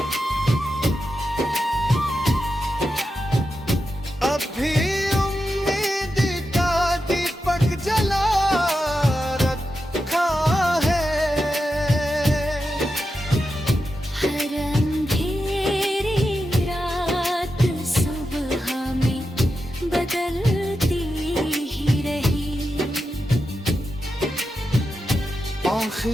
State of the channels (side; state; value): both; normal; correlation 0.89